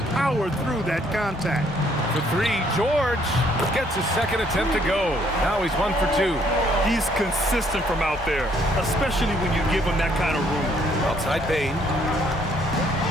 power through that contact. For 3, George gets his second attempt to go. Now he's 1 for 2. He's consistent from out there, especially when you give him that kind of room. Outside Bane.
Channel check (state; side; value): normal; both; correlation 0.66